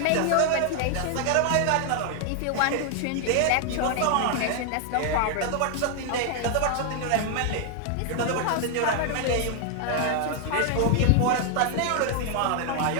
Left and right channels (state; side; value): different; both; correlation 0.00